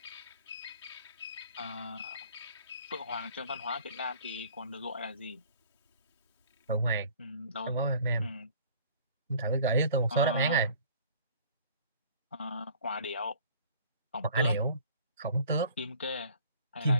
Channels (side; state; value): both; inverted; correlation -0.51